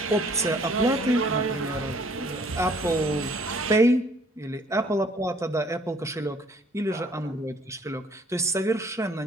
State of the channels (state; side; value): normal; both; correlation 0.59